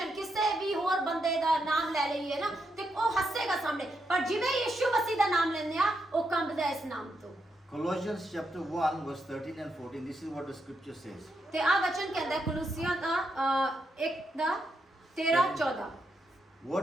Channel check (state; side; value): normal; both; correlation 0.82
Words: ਕਿਸੇ ਵੀ ਹੋਰ ਬੰਦੇ ਦਾ ਨਾਮ ਲੈ ਲਈਏ ਨਾ ਤੇ ਉਹ ਹੱਸੇਗਾ ਸਾਹਮਣੇ, ਪਰ ਜਿਵੇਂ ਯਿਸੂ ਮਸੀਹ ਦਾ ਨਾਮ ਲੈਂਦੇ ਆ ਉਹ ਕੰਬਦਾ ਇਸ ਨਾਮ ਤੋਂ। Colossians chapter 1 verse 13 and 14, this is what the scripture says. ਤੇ ਆ ਵਚਨ ਕਹਿੰਦਾ ਕੁਲੂਸੀਆਂ ਦਾ 1 ਦਾ 13 14।